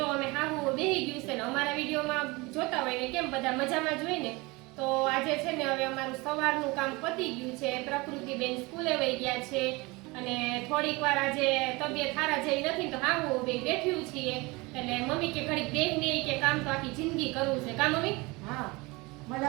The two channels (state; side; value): quieter; left; 24.2 dB